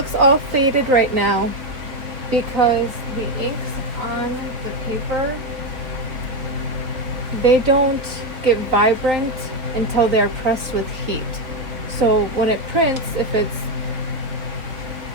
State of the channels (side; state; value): left; late; 3.2 ms